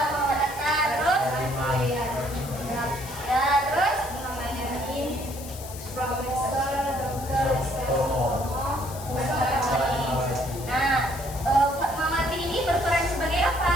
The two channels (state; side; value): noise; left; hiss, 14 dB below the sound